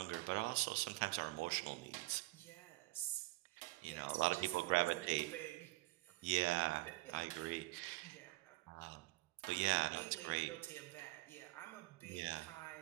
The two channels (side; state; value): left; quieter; 21.2 dB